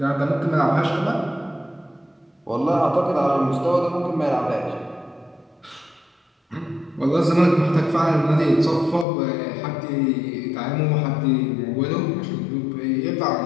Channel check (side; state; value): right; drops out; at 9.1 s